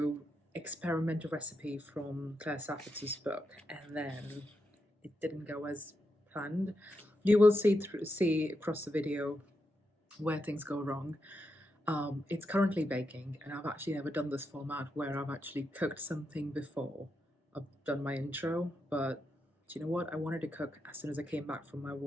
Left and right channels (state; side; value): normal; both; correlation 0.85